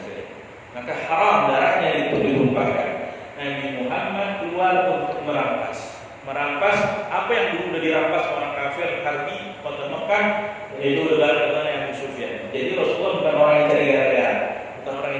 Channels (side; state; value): both; identical; correlation 1.00